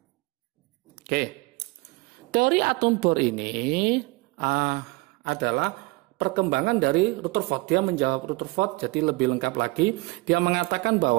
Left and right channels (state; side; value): quieter; left; 23.2 dB